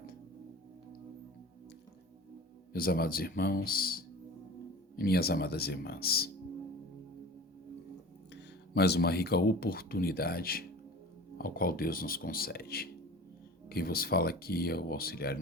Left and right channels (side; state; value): both; normal; correlation 0.38